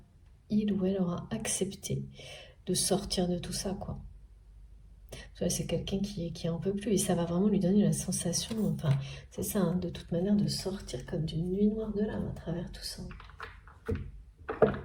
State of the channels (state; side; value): identical; both; correlation 1.00